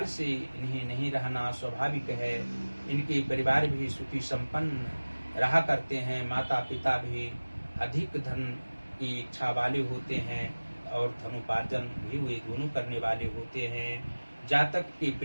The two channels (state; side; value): inverted; both; correlation -1.00